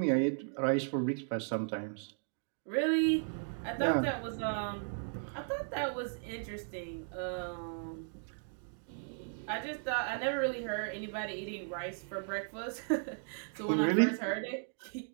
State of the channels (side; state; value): left; silent; digital silence